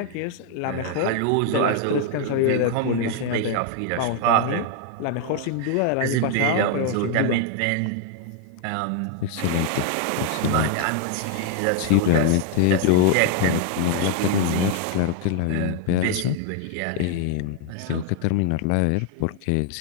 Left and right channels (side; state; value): both; different; correlation 0.00